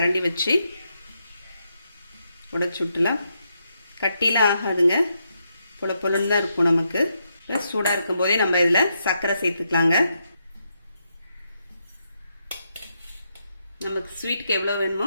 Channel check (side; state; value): both; inverted; correlation -0.81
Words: வச்சு உடைச்சு விட்டுலாம். கட்டிலாம் ஆகாதுங்க, பொழுன்னு தான் இருக்கும். நமக்கு சூடாக இருக்கும் போதே நம்ம இதில் சர்க்கரை சேர்த்துக்கலாங்க. நமக்கு ஸ்வீட்டுக்கு எவ்வளோ